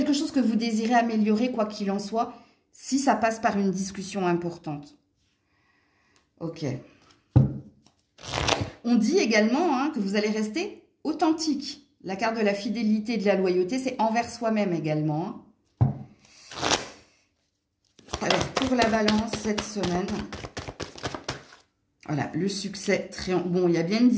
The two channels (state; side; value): identical; both; correlation 1.00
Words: chose que vous désirez améliorer, quoi qu'il en soit, si ça passe par une discussion importante. Ok. On dit également hein, que vous allez rester authentique. La carte de la fidélité et de la loyauté, c'est envers soi-même également. Hein. Alors, pour la balance, cette semaine, voilà, le succès, bon, il y a bien une